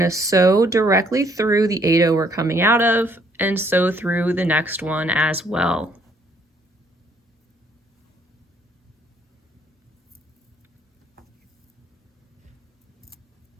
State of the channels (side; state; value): both; normal; correlation 0.65